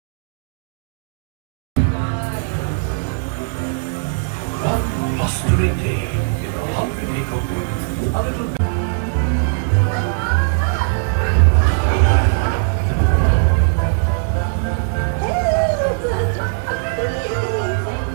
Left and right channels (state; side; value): silent; left; digital silence